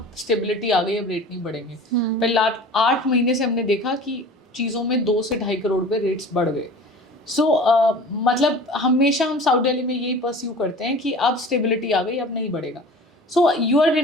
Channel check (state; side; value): normal; both; correlation 0.41